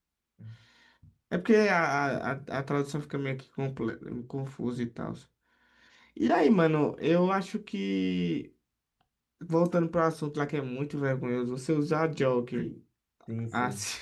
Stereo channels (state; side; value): identical; both; correlation 1.00